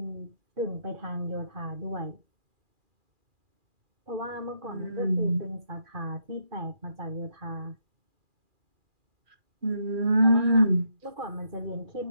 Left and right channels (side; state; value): left; late; 2.4 ms